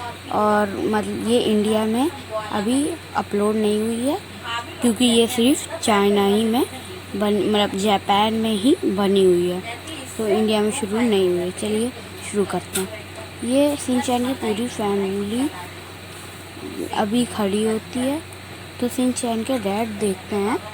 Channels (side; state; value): both; identical; correlation 1.00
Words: और मतलब ये इंडिया में अभी अपलोड नहीं हुई है क्योंकि ये सिर्फ चाइना ही में मतलब जापान में ही बनी हुई है, तो इंडिया में शुरू नहीं हुई है। चलिए शुरू करते हैं। ये शिनचैन की पूरी फैमिली अभी खड़ी होती है, तो शिनचैन के डैड देखते हैं